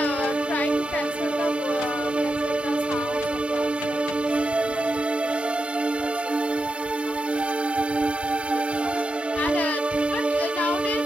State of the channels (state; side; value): normal; both; correlation 0.88